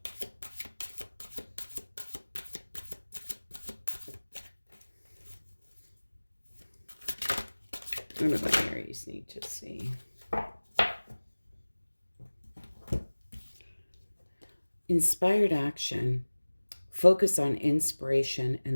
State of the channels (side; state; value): both; inverted; correlation -1.00